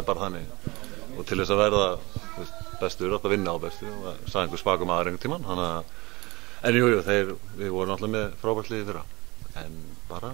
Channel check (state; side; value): quieter; left; 22.8 dB